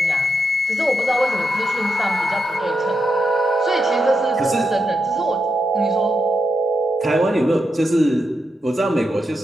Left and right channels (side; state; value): both; normal; correlation 0.85